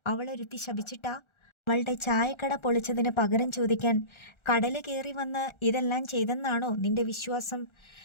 അവളൊരുത്തി ശപിച്ചിട്ടാ? അവളുടെ ചായക്കട പൊളിച്ചതിന് പകരം ചോദിക്കാൻ കടല് കയറി വന്ന് ഇതെല്ലാം ചെയ്തെന്നാണോ നിന്റെ വിശ്വാസം?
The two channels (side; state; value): right; late; 1.3 ms